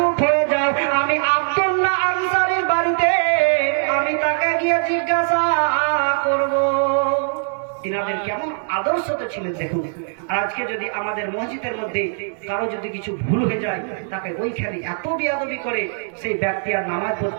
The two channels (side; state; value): left; silent; digital silence